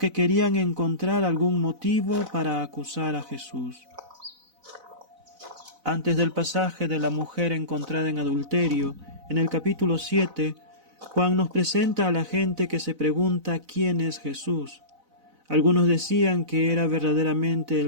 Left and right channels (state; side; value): late; left; 4.0 ms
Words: querían encontrar algún motivo para acusar a Jesús. Antes del pasaje de la mujer encontrada en adulterio, en el capítulo 7, Juan nos presenta a la gente que se pregunta quién es Jesús. Algunos decían que era verdaderamente